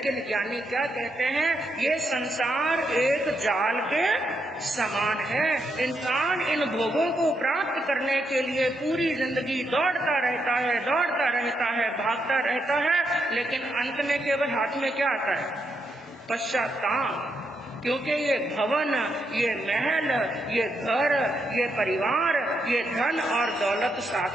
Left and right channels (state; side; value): normal; both; correlation 0.80